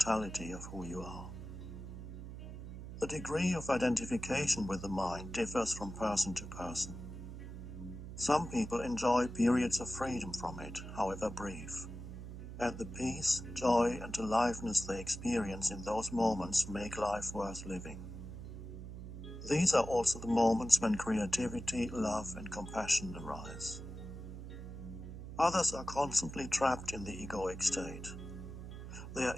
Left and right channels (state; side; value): noise; right; hum, 10 dB below the sound